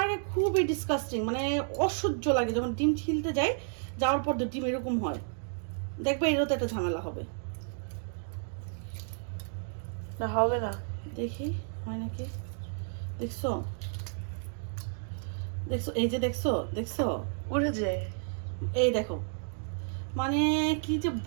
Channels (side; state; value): left; silent; digital silence